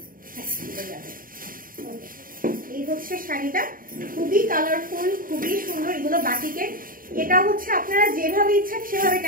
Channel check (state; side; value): late; left; 0.41 ms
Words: হ্যাঁ, এই হচ্ছে শাড়িটা, খুবই কালারফুল, খুবই সুন্দর। এগুলো বাটিকের। এটা হচ্ছে আপনারা যেভাবে ইচ্ছা সেভাবে